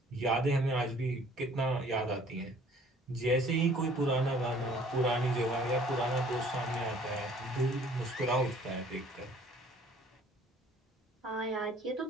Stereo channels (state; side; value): normal; both; correlation 0.55